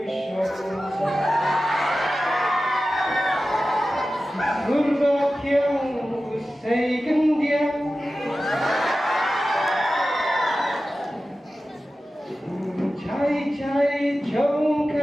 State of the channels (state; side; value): normal; both; correlation 0.94